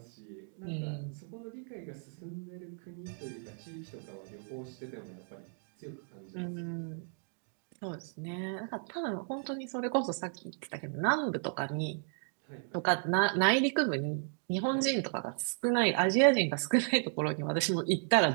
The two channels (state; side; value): silent; left; 55 dB below the other